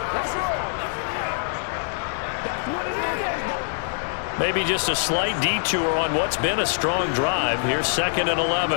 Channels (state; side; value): silent; right; digital silence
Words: Maybe just a slight detour on what's been a strong drive. Here's 2nd and